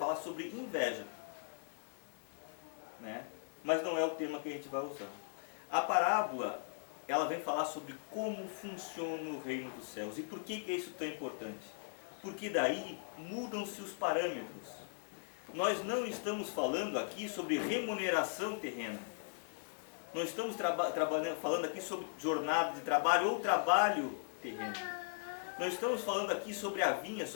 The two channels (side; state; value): right; silent; 52 dB below the other